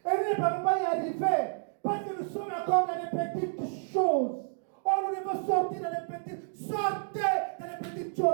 Et nous ne pouvons pas y arriver parce que nous sommes encore dans les petites choses. Oh, nous devons sortir dans les petites. Sortez dans les petites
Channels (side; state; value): left; silent; digital silence